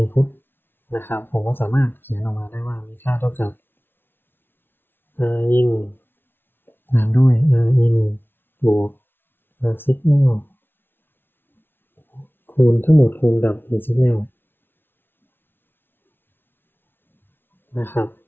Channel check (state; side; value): late; right; 0.10 ms